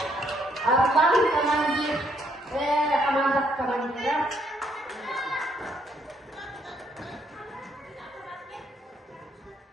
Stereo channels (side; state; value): both; normal; correlation 0.71